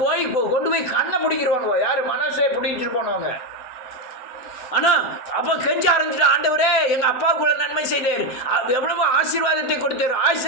கொண்டு போய் கண்ணை பிடிக்கிறவானுவோ. யார்? மனசை பிடிச்சிட்டு போனவங்க. ஆனால் அப்போ கெஞ்ச ஆரம்பிச்சுட்டு, ஆண்டவரே எங்கள் அப்பாவுக்குள்ள நன்மை செய்தீர், எவ்வளவோ ஆசீர்வாதத்தை கொடுத்தீர், ஆயுசு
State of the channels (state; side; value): late; right; 7.9 ms